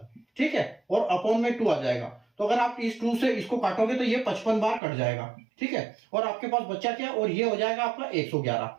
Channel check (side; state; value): left; drops out; at 4.8 s